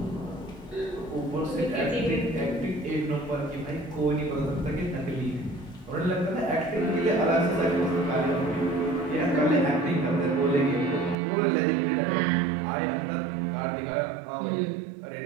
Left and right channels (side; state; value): left; drops out; at 11.2 s